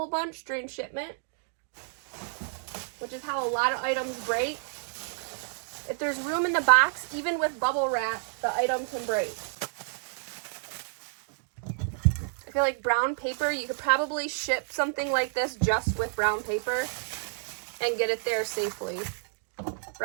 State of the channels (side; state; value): left; silent; digital silence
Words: bunch during shipment, which is how a lot of items break. If there's room in the box, even with bubble wrap, the item can break. I feel like brown paper, you could probably ship something like this just with brown paper and get it there safely.